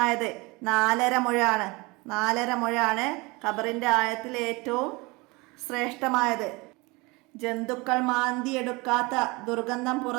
4.5 മുഴമാണ്. 4.5 മുഴമാണ് ഖബറിൻ്റെ ആഴത്തിൽ ഏറ്റവും ശ്രേഷ്ഠമായത്. ജന്തുക്കൾ മാന്തിയെടുക്കാത്ത, ദുർഗന്ധം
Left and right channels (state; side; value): quieter; left; 25.1 dB